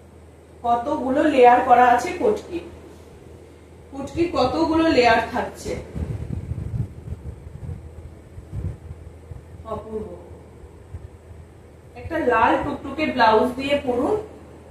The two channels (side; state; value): both; identical; correlation 1.00